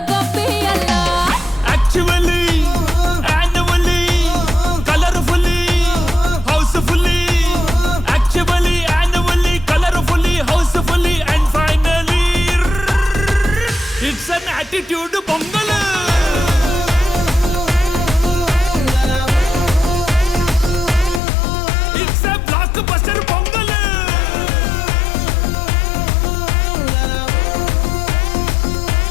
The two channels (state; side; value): drops out; right; at 21.2 s